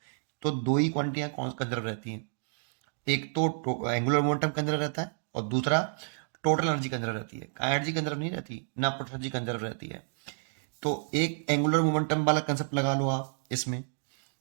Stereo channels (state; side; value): silent; left; digital silence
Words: तो दो ही क्वांटिटियां कंजर्व रहती हैं, एक तो एंगुलर मोमेंटम कंजर्व रहता है और दूसरा टोटल एनर्जी कंजर्व रहती है। एनर्जी कंजर्व नहीं रहती, ना टोटल एनर्जी कंजर्व रहती है। तो एक एंगुलर मोमेंटम वाला कंसेप्ट लगा लो आप, इसमें